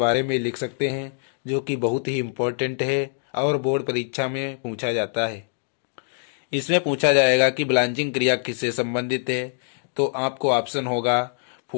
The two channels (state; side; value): silent; right; digital silence